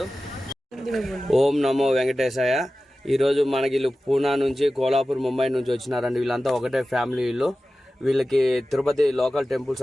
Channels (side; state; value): both; normal; correlation 0.95